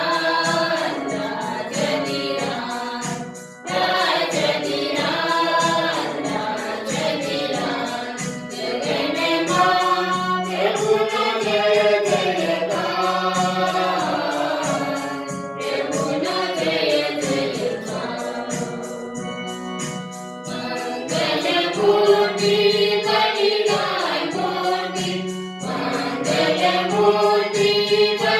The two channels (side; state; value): both; identical; correlation 1.00